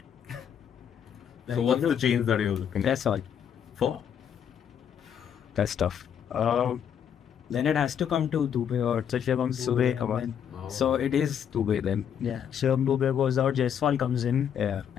So what's the change that you're looking at That's all. for? That's tough. Then it has to come to Dubey or Shivam Dubey. Come on. So it is Dubey then. Yeah. Shivam Dubey goes out, Jaiswal comes in, Yeah.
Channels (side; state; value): right; quieter; 8.5 dB